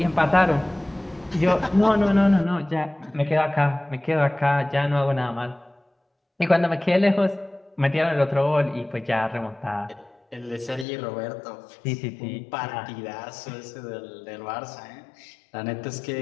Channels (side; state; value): right; drops out; at 10.9 s